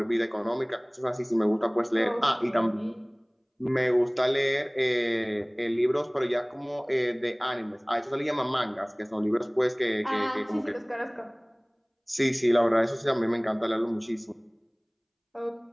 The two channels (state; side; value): identical; both; correlation 1.00